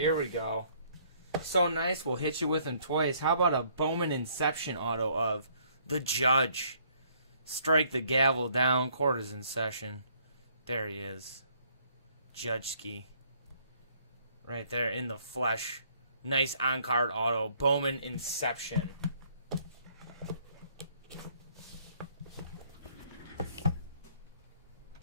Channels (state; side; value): inverted; both; correlation -0.64